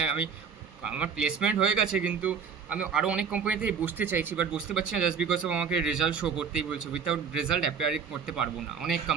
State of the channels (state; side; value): quieter; left; 6.4 dB